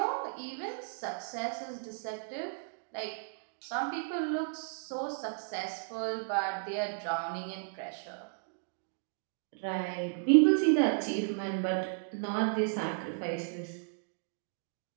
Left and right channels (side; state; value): left; silent; digital silence